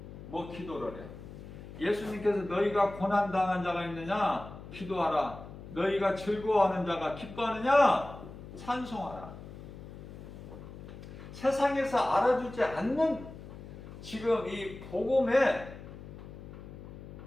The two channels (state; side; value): noise; left; hum, 14 dB below the sound